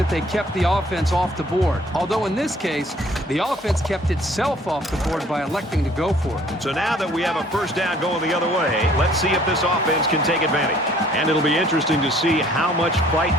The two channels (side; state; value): both; normal; correlation 0.57